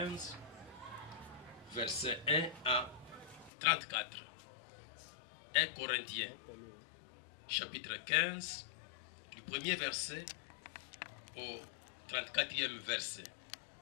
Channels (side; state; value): right; drops out; at 3.5 s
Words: verset 1 à 34. 1 Corinthiens chapitre 15, du premier verset au 34e verset.